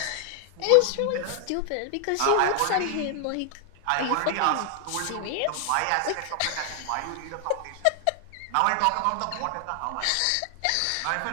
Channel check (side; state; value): both; different; correlation 0.00